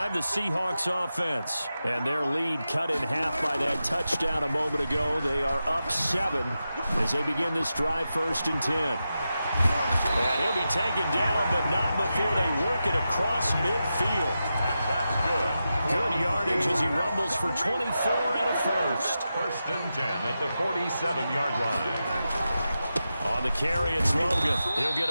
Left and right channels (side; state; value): both; inverted; correlation -0.90